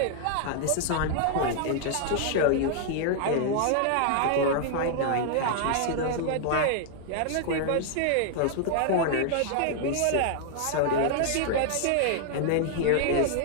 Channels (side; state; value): both; different; correlation 0.00